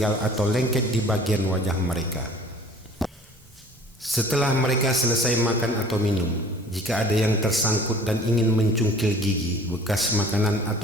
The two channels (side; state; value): both; normal; correlation 0.49